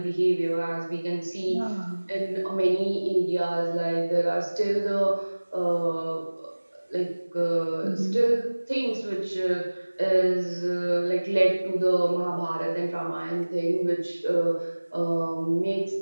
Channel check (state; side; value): inverted; both; correlation -1.00